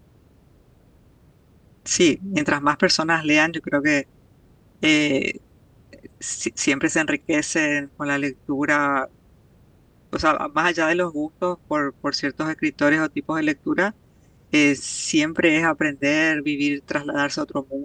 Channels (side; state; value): both; identical; correlation 1.00